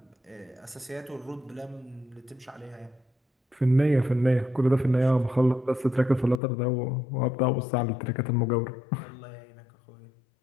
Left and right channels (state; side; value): drops out; right; at 6.4 s